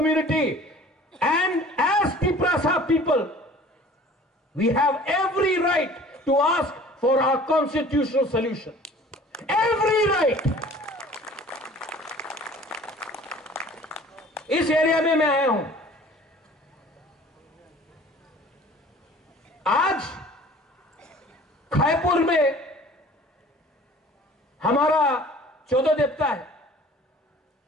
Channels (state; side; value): normal; both; correlation 0.48